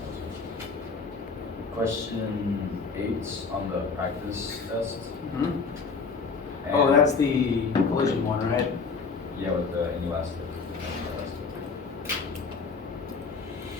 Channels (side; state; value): right; quieter; 4.8 dB